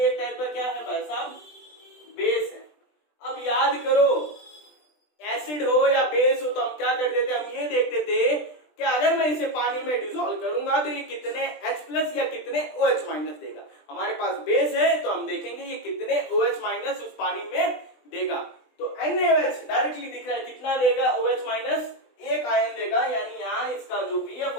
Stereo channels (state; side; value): late; right; 20 ms